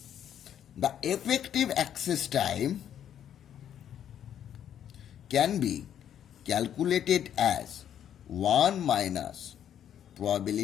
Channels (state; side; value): quieter; right; 9.8 dB